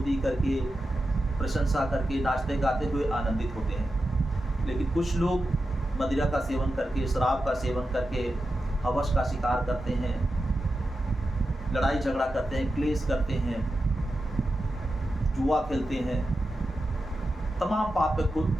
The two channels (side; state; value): both; normal; correlation 0.90